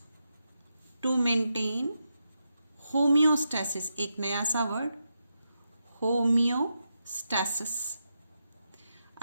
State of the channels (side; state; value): both; inverted; correlation -0.86